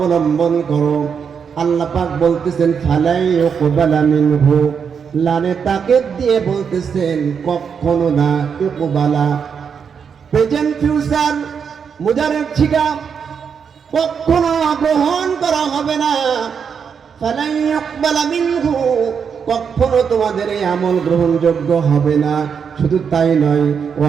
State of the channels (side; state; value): left; quieter; 6.7 dB